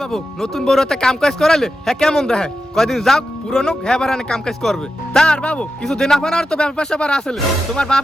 বাবু নতুন বড়তে কাম কাজ করালে হ্যাঁ কেমন দেখে কয়দিন যাও পুরনো হ্যাঁ বারানে কাম কাজ করবে তার বাবু কিছু দিন আপনার তো ব্যবসা বার আসলে তোমার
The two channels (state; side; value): normal; both; correlation 0.90